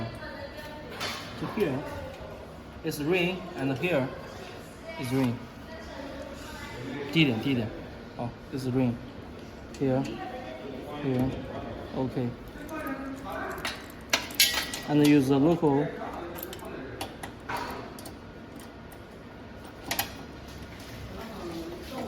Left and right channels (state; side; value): identical; both; correlation 1.00